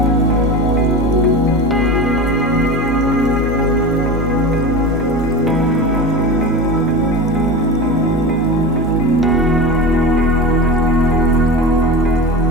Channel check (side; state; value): both; normal; correlation 0.27